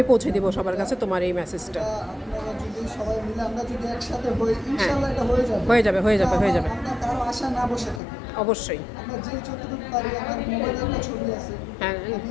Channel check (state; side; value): drops out; right; at 8.0 s